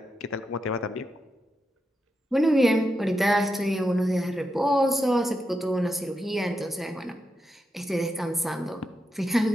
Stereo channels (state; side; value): normal; both; correlation 0.86